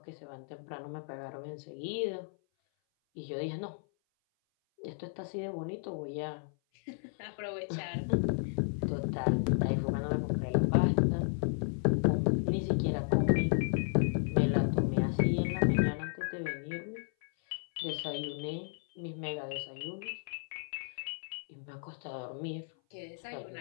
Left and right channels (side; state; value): right; silent; 55 dB below the other